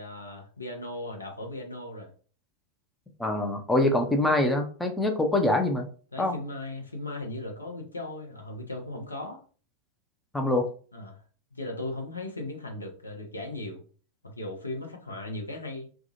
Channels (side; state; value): both; normal; correlation 0.31